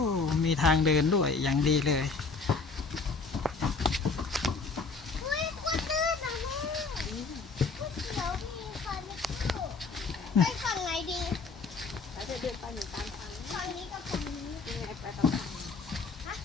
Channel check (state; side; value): quieter; right; 4.4 dB